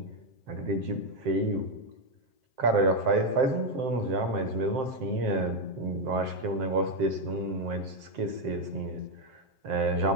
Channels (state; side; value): late; left; 7.6 ms